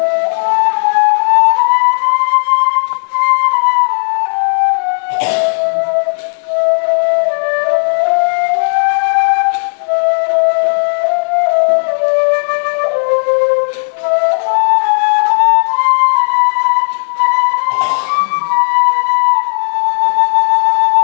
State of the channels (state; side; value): silent; right; 69 dB below the other